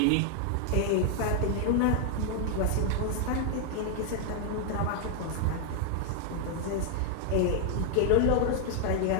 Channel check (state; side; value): different; both; correlation 0.00